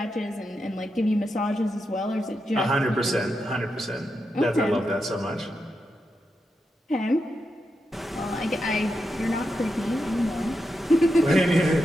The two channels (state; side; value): normal; both; correlation 0.86